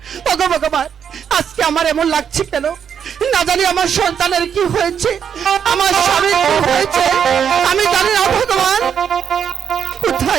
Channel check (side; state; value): left; quieter; 7.9 dB